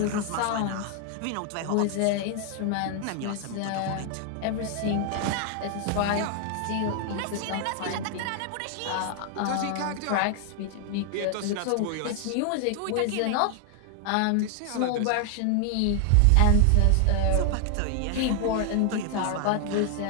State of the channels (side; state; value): both; different; correlation 0.00